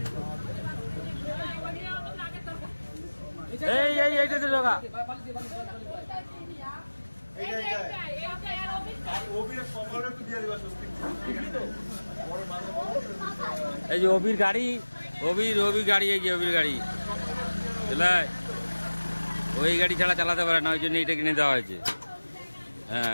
এই এই এইটাতে ঢোকা। এই যে অবির গাড়ি, অবির গাড়ি, এই যে অবির গাড়ি, ওই গাড়ি ছাড়া চালাতে পারে না, ওই জন্য এইটা কিনে দেওয়া হয়েছে। হ্যাঁ,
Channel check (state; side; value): inverted; both; correlation -1.00